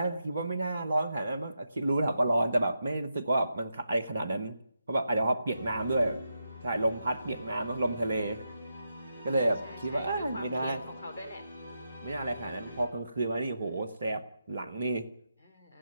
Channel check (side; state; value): both; inverted; correlation -0.86